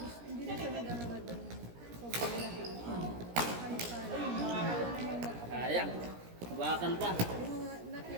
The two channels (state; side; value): late; left; 17 ms